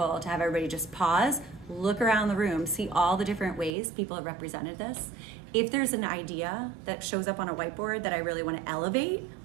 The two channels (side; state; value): left; drops out; at 3.8 s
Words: to have everybody just pause, look around the room, see all the different ways people have represented this. If there's an idea that shows up on a whiteboard that I really want to elevate,